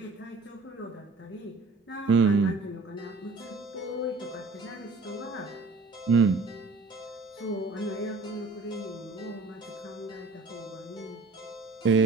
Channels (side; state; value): left; quieter; 3.7 dB